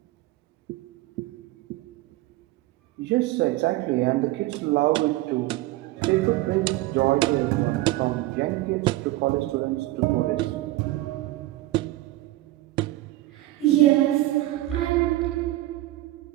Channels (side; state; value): left; quieter; 17.3 dB